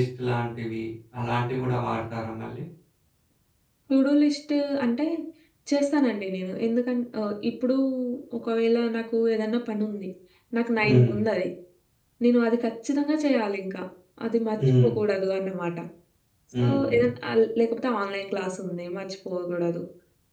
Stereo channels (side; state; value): both; identical; correlation 1.00